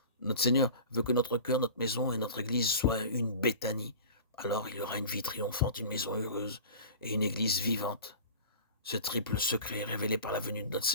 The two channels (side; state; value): both; inverted; correlation -0.37